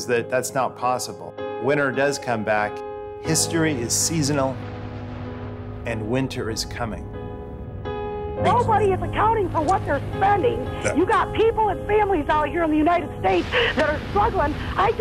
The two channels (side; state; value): both; identical; correlation 1.00